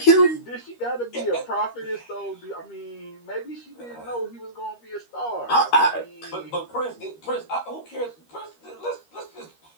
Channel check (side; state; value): right; late; 13 ms